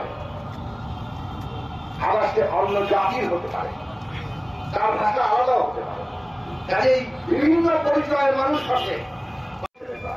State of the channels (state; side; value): identical; both; correlation 1.00